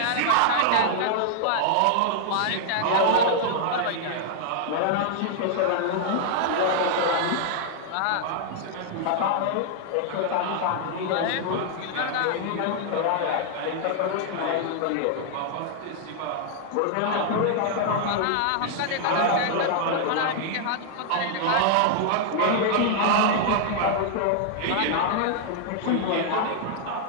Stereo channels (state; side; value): different; both; correlation -0.01